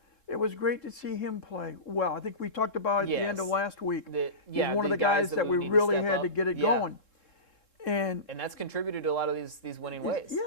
it was great to see him play well. I think we talked about at the end of Yes. last week. He's Yeah, one of the guys that we need to really step had to up. get it Yeah. going. And And that's contributed to a lot of these winning ways.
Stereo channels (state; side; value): late; right; 3.7 ms